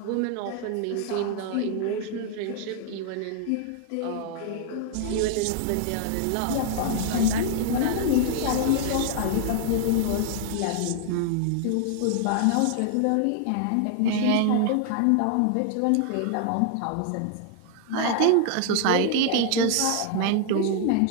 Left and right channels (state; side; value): different; both; correlation 0.00